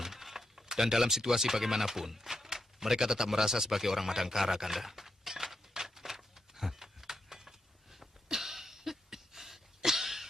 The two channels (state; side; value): normal; both; correlation 0.83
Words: dan dalam situasi bagaimanapun, mereka tetap merasa sebagai orang Madangkara, Kanda.